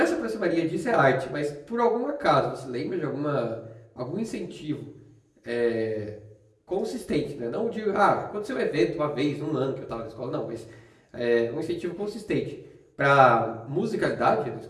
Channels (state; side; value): identical; both; correlation 1.00